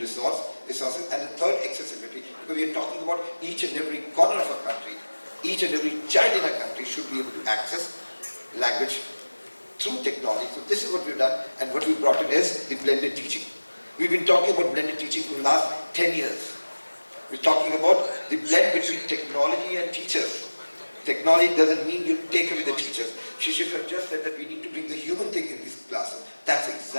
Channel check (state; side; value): inverted; both; correlation -1.00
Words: and the third accessibility. Because we are talking about each and every corner of a country, each and every child in a country should be able to access language through technology. So this is what we've done, and what we brought in is the blended teaching. We've been talking about blended teaching for the last 10 years. We're talking about the blend between technology and teachers. Technology doesn't mean you take away the teachers. Shishir just said that we need to bring the human thing in this classroom. That's